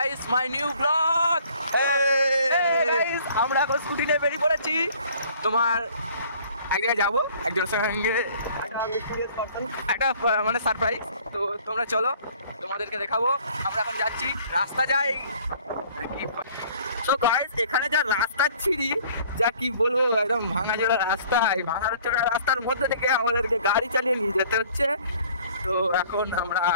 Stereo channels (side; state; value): both; inverted; correlation -0.55